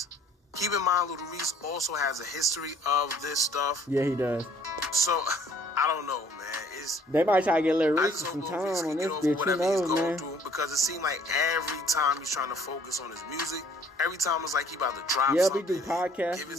Keep in mind, Little Reese also has a history of this stuff. Yeah, he does. So, I don't know, man. They might try to get Little Reese some time on this bitch, you know, man. Because it seemed like every time he's trying to focus on his music, every time it's like he about to drop we something, do podcasts, give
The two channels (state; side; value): normal; both; correlation 0.58